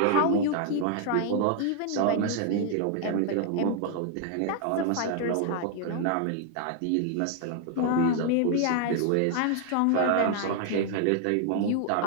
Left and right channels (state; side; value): different; both; correlation 0.00